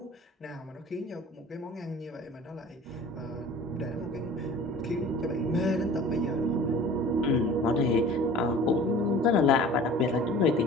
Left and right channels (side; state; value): both; normal; correlation 0.43